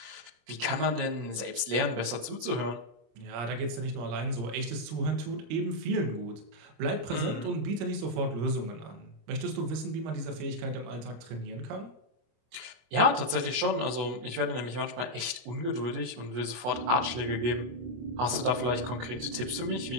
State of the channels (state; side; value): late; left; 24 ms